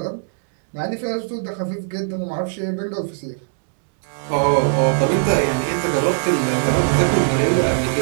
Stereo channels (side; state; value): left; silent; digital silence